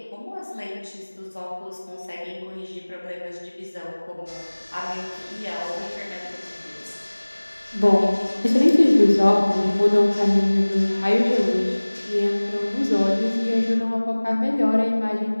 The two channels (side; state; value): both; inverted; correlation -1.00